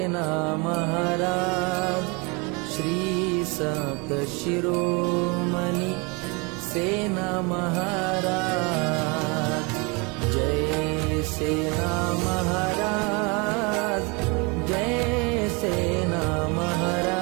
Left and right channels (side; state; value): left; quieter; 29.6 dB